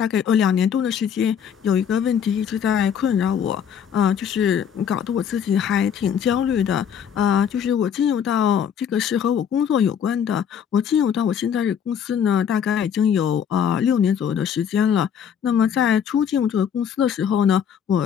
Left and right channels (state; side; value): quieter; right; 8.1 dB